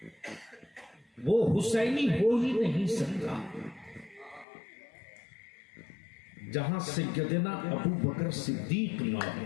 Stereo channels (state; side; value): drops out; right; at 4.5 s